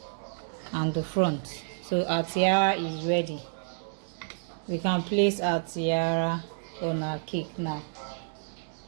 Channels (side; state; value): left; silent; digital silence